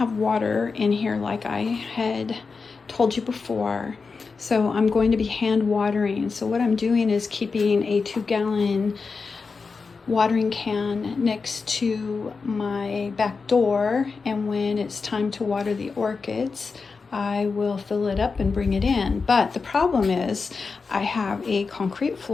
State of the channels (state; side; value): quieter; right; 4.7 dB